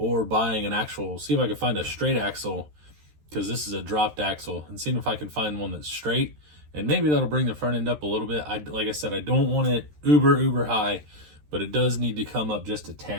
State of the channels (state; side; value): late; left; 13 ms